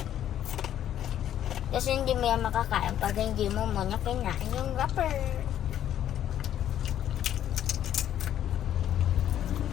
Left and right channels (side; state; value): right; quieter; 10.9 dB